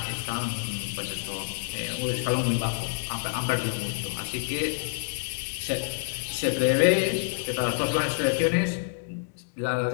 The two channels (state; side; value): silent; right; digital silence